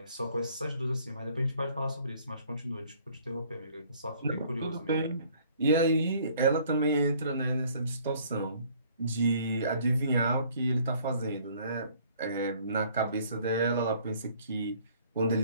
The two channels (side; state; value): both; inverted; correlation -0.58